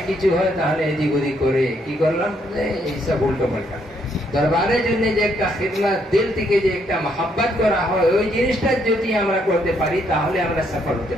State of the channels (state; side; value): normal; both; correlation 0.72